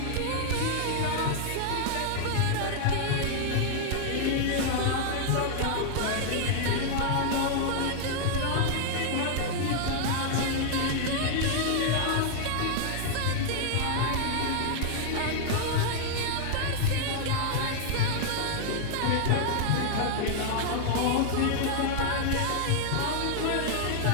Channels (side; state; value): both; different; correlation -0.01